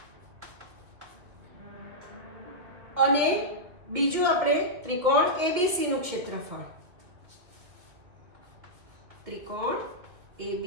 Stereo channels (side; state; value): left; late; 2.4 ms